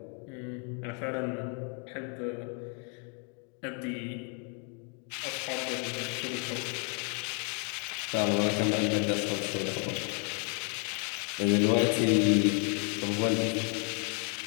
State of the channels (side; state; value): right; quieter; 38.7 dB